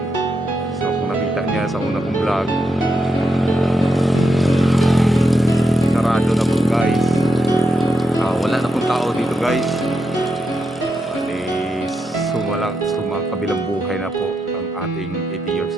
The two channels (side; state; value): both; normal; correlation 0.84